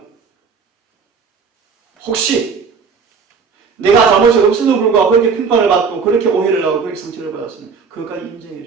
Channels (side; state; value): left; quieter; 5.5 dB